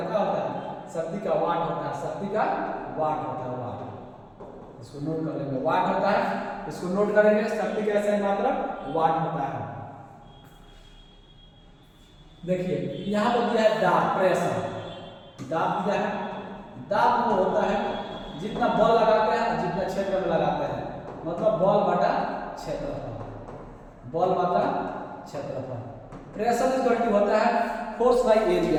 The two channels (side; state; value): both; identical; correlation 1.00